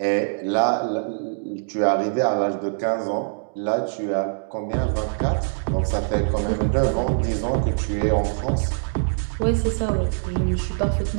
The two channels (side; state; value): left; silent; digital silence